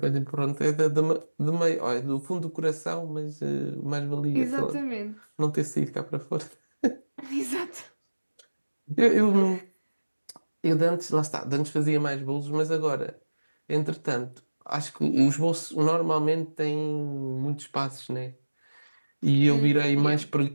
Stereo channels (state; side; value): inverted; both; correlation -1.00